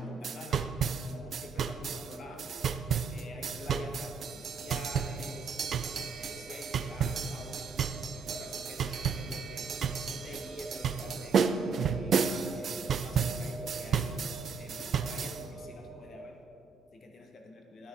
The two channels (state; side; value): quieter; left; 5.5 dB